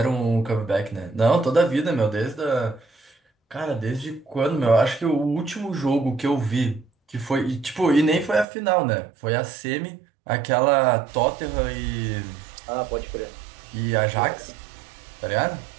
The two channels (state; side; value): drops out; left; at 8.5 s